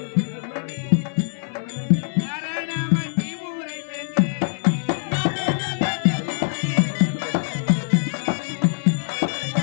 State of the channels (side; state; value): right; silent; 61 dB below the other